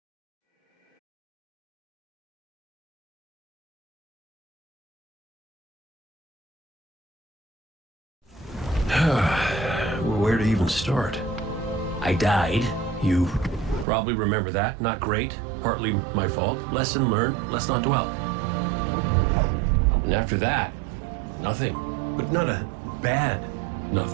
Where to even start? I died. You probably remember that. Not great. Partly my fault. Lesson learned. Let's not dwell. And after that, nothing. But not a bad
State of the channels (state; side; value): drops out; left; at 13.9 s